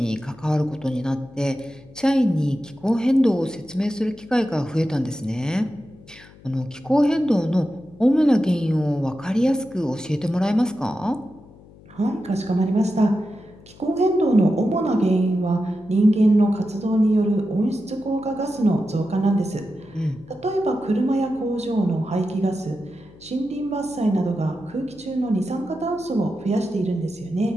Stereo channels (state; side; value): noise; left; hum, 23 dB below the sound